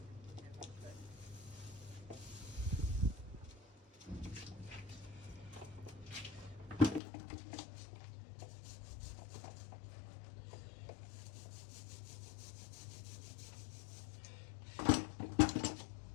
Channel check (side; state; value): right; drops out; at 7.0 s